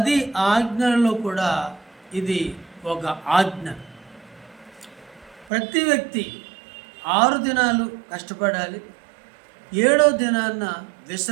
ఆజ్ఞలలో కూడా ఇది ఒక ఆజ్ఞ. ప్రతి వ్యక్తి 6 దినాలు కష్టపడాలి, 7వ దినాన్న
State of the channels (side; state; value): left; drops out; at 5.5 s